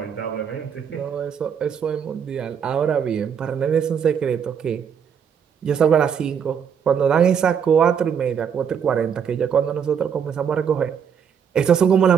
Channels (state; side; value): quieter; left; 7.6 dB